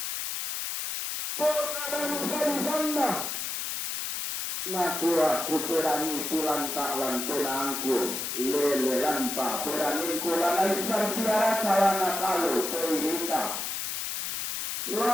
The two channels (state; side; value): noise; left; hiss, 3 dB below the sound